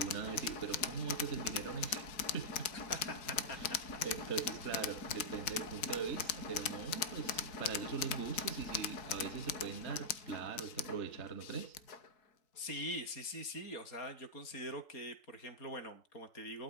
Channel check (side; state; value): right; late; 3.9 ms